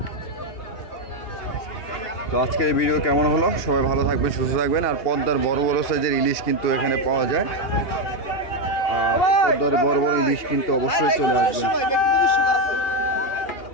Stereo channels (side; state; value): right; late; 2.8 ms